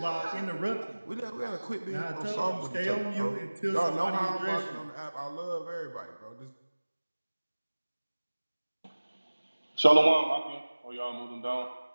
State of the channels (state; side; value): inverted; both; correlation -1.00